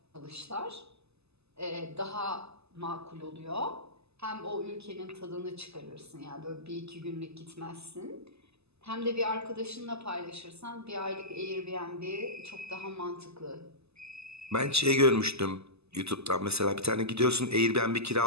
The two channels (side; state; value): left; late; 0.79 ms